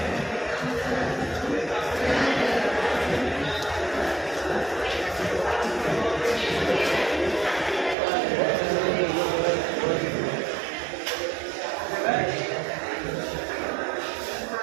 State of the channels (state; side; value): drops out; left; at 8.0 s